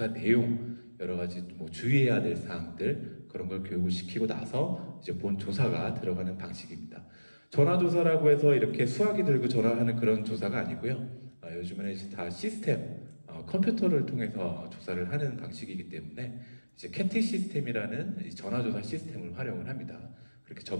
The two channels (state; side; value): inverted; both; correlation -1.00